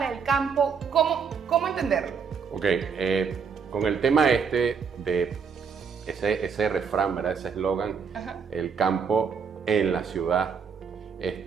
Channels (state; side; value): quieter; left; 6.2 dB